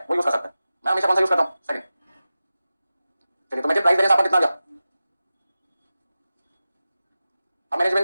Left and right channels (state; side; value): inverted; both; correlation -0.94